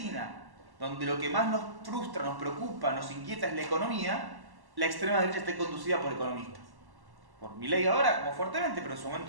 donde lo que más nos frustra, nos preocupa, nos inquieta es la economía, la extrema derecha esté conducida por economistas. Por Milei ahora, como fuertemente, pero en su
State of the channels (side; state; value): left; late; 1.1 ms